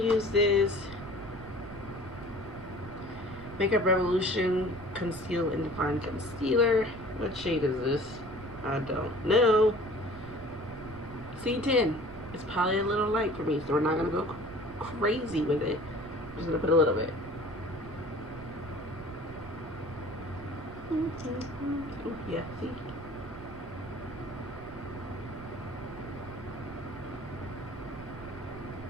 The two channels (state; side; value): noise; right; rumble, 15 dB below the sound